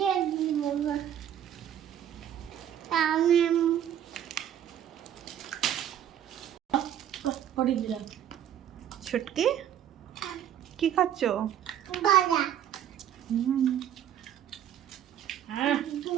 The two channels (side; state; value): left; quieter; 10.3 dB